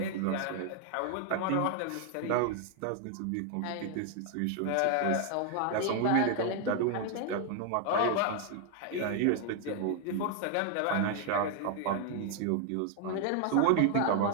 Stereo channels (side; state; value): both; different; correlation 0.00